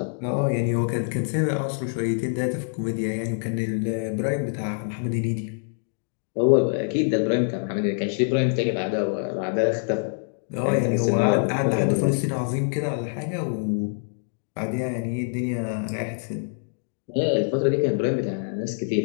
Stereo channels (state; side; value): silent; right; digital silence